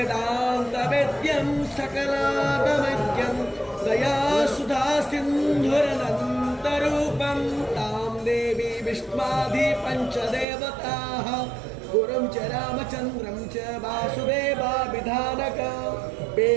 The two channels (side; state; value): left; drops out; at 10.5 s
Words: सकलागमज्ञं दयासुधा सिन्धुरनन्तरूपं तां देवी विष्मादि पञ्चदेवताः गुरुं च रामचन्द्रं च वासुदेवाभिधानक